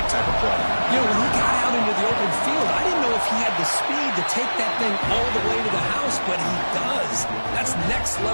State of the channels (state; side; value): inverted; both; correlation -1.00